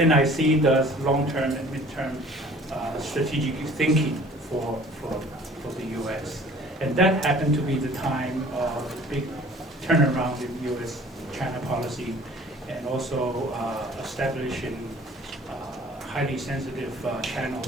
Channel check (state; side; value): normal; both; correlation 0.50